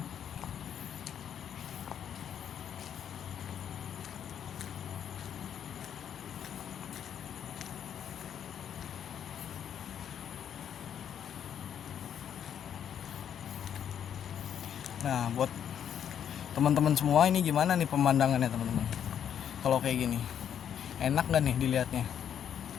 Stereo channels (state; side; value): quieter; right; 9.0 dB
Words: Nah buat teman-teman semua ini gimana nih pemandangannya teman-teman? Kalau kayak gini enak gak nih dilihatnya?